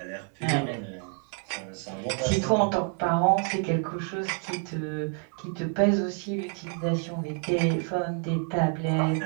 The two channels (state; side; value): quieter; left; 39.3 dB